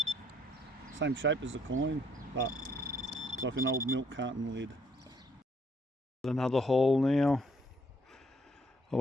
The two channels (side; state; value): both; normal; correlation 0.67